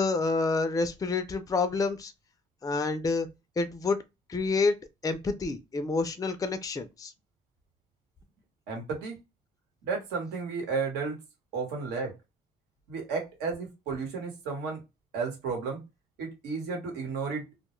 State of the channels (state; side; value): normal; both; correlation 0.53